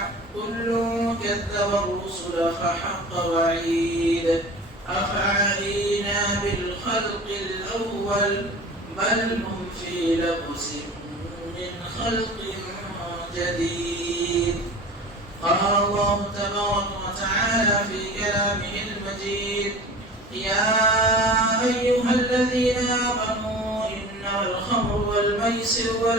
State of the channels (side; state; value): both; normal; correlation 0.38